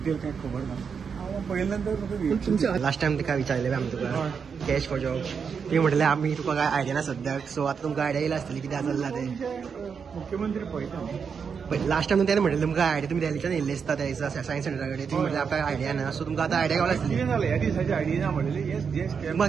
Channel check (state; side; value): quieter; left; 6.3 dB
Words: कांय खबर ना. हांव पळयल्या नंतर म्हाका तुमच्या लास्ट टायम तुका विचारलें आमी तुका कॅश फॉर जॉब ती म्हटलें आमी तुका काय आयडिया ना सद्याक. सो आतां तुमकां आयडिया येयला आसतली कितें चल्लां तें. मुख्यमंत्री पळयता बट लास्ट टायम तेणें म्हटलें तुमकां आयडिया तुमी दिल्ल्याच्यान येयल्ले आसता त्या सायन्स सेंटरा कडेन ती म्हटलें आमकां आयडिया ना. सो तुमकां आतां आयडिया गावला आसतली. कितें जालें ह्या दिसाची आयडिया ना म्हणलेली